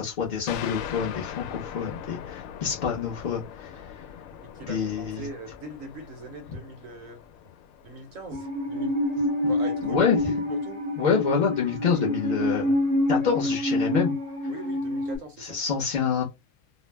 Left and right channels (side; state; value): right; quieter; 3.6 dB